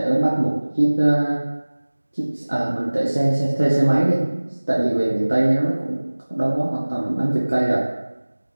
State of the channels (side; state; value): both; inverted; correlation -1.00